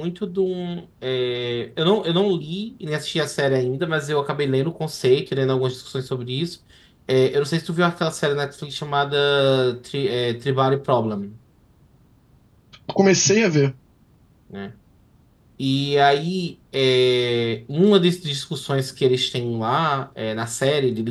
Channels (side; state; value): both; identical; correlation 1.00